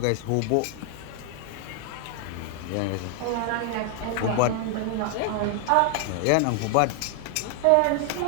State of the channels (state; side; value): different; both; correlation 0.00